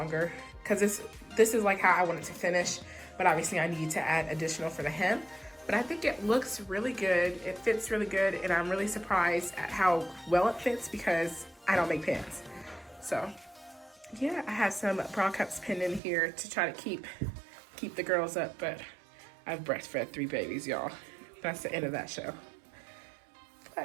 because this is like how I want it to finish, but obviously I need to add additional for the hem. But I think it looks really good. It fits really good, and I'm really surprised at how well it fits because I don't make pants. So yeah, I have some bra cups pinned in here to try to keep the girls up, but I've breastfed 3 babies, y'all. That's the end of that show.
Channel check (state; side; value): drops out; left; at 16.0 s